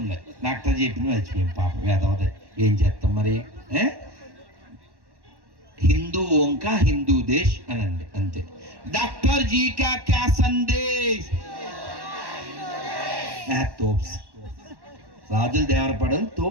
డాక్టర్ చెప్పింది మర్చిపోయాం, పాపం వేదవదే, ఏం చేస్తాం మరి. హిందూ ఓంకా హిందూ దేశ్ అనండి, అంతే. డాక్టర్ జీ కా క్యా సందేశ్, తోప్స్, రాజుల దేవరపడలు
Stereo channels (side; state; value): left; late; 1.1 ms